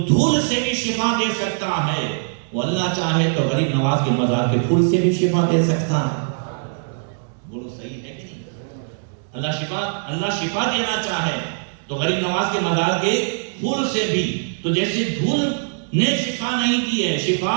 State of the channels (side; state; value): left; silent; 65 dB below the other